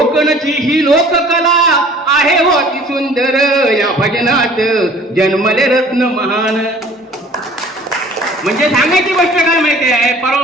ही लोककला आहे होती सुंदर, या भजनात जन्मले रत्न महान. म्हणजे सांगायची गोष्ट काय माहिती आहे, परवा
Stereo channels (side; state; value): both; normal; correlation 0.50